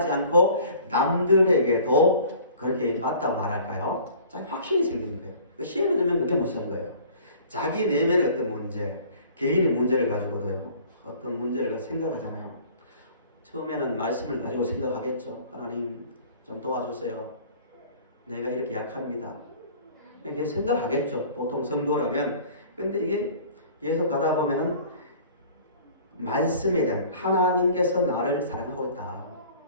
않고 남들에게도 그렇게 맞다고 말할까요? 자기 확신이 생기는 거예요. 시험에 들면 그게 무서운 거예요. 자기 내면의 어떤 문제, 개인의 문제를 가지고도요. 어떤 문제를 생각하잖아요. 처음에는 말씀을 가지고 생각하겠죠. 하나님 좀 도와주세요. 내가 이렇게 약합니다. 이렇게 생각하겠죠. 보통 성도라면. 근데 이게 계속 가다 보면은 말씀에 대한 하나님께서 나를 사랑하고 있다.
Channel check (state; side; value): inverted; both; correlation -0.49